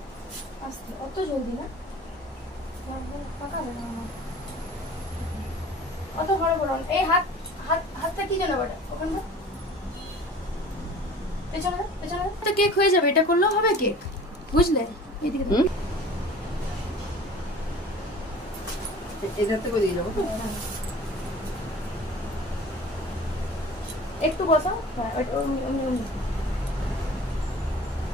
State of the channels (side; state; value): both; normal; correlation 0.43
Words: অত জলদি না, অত বড় বড় এই হাতটা কি জানো বেটা, ওখানটা পেছনে পেছনে তো কেক হয়ে যাবে। এটা করলেও হবে কেক, বুঝলে? এদিকে এটাতে করে দিয়ে যাবো, একটু বসাও।